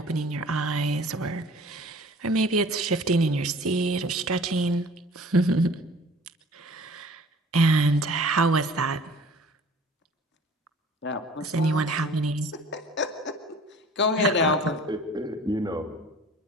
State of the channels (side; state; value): both; normal; correlation 0.48